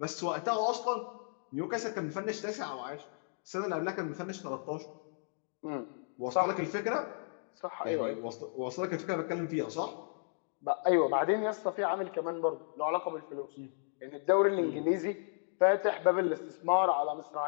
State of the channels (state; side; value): silent; right; digital silence